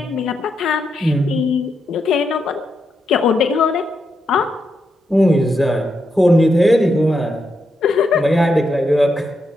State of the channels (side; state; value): both; normal; correlation 0.83